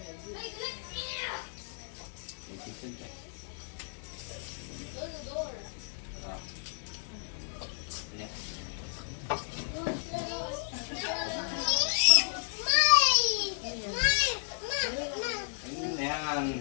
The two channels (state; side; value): silent; right; digital silence